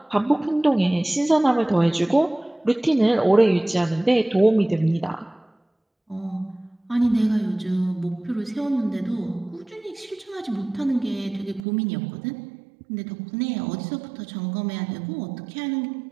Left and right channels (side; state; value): left; drops out; at 11.6 s